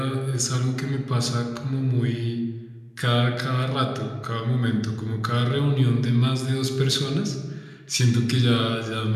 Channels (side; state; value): both; identical; correlation 1.00